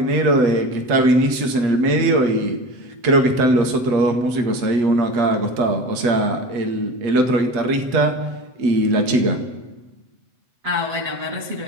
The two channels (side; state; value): left; late; 7.9 ms